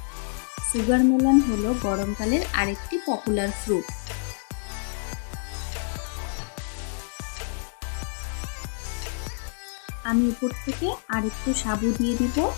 সুগার মেলন হলো গরমকালের আরেকটি পপুলার ফ্রুট। আমি উপর থেকে আরেকটু সাবু দিয়ে দিব।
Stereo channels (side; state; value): right; silent; 60 dB below the other